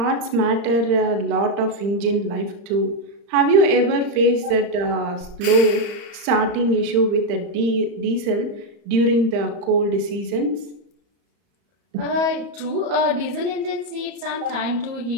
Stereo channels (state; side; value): late; left; 35 ms